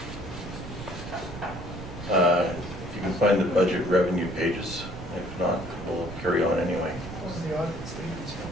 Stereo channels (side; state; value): right; noise; rumble, 11 dB below the sound